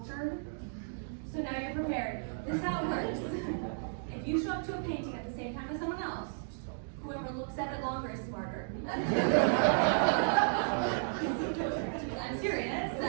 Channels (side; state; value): left; silent; digital silence